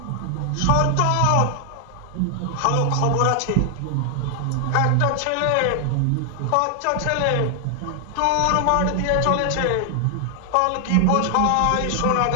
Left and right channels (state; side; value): different; both; correlation 0.00